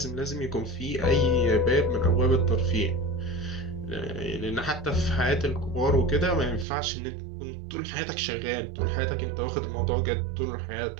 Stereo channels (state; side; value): drops out; left; at 6.7 s